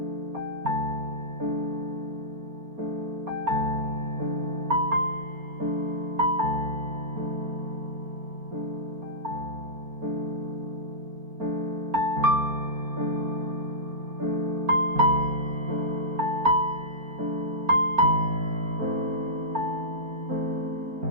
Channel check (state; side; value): late; left; 4.3 ms